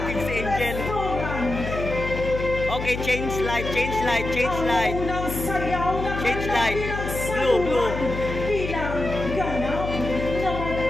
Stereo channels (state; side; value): noise; left; hum, 5 dB below the sound